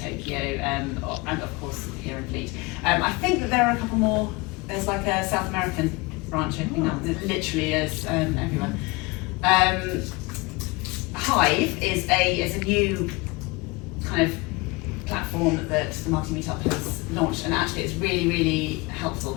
and of course here in Fleet. I think that there are a couple more. There's like a South American branch opening up. It literally is everywhere. Hive is a new kind of platform that the Marketing Meetup has launched, and actually it's really, really helpful.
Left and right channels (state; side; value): quieter; right; 25.1 dB